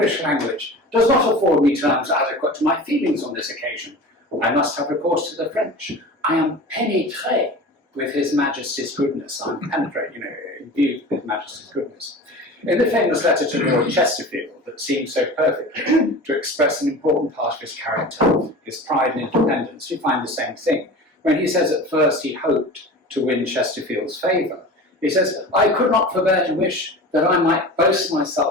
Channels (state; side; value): normal; both; correlation 0.35